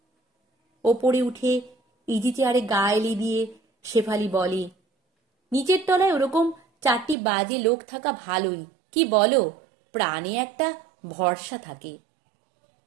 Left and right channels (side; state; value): left; drops out; at 7.2 s